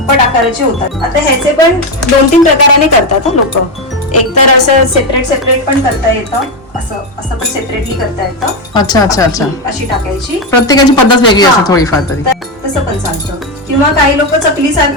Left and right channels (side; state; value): both; normal; correlation 0.10